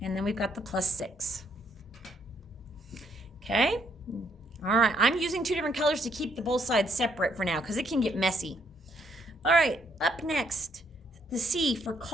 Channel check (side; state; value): both; normal; correlation 0.71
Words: And then we've got the plus 6. Okay? All right. I'm using 2 different colors to keep the both sides separate for now because it can get messy. All right. Up next, the C for